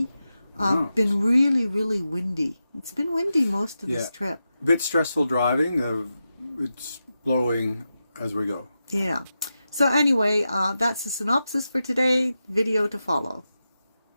Been really, really windy. It's been windy most of this trip. A bit stressful driving. It's blowing as we go. Yeah. So anyway, that's the synopsis for today. Video to follow.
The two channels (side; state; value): both; inverted; correlation -0.90